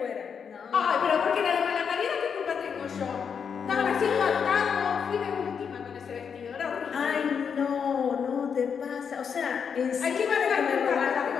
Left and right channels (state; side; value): quieter; right; 6.8 dB